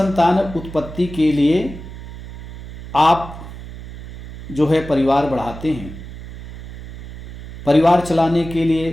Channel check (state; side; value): noise; right; hum, 12 dB below the sound